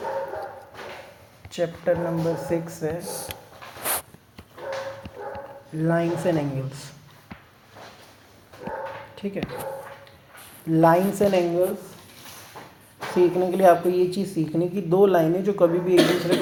चैप्टर नंबर 6 है लाइन्स एंड एंगल्स। ठीक है, लाइन्स एंड एंगल्स सीखने के लिए आपको ये चीज़ सीखनी कि दो लाइनें जो कभी भी एक दूसरे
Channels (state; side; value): identical; both; correlation 1.00